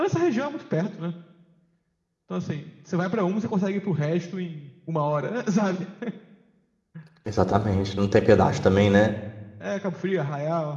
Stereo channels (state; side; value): identical; both; correlation 1.00